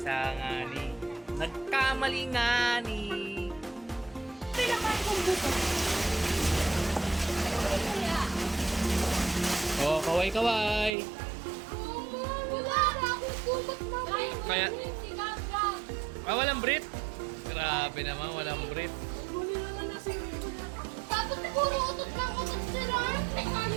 ngani. Nagkamali ngani. Pinakaan kong buto. Oh, kaway-kaway. Wala na akong kumot na. Kaya- walang Brit? Grabe naman, walang Brit. Dapat siguro utot lang utot sila.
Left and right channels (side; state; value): left; drops out; at 11.0 s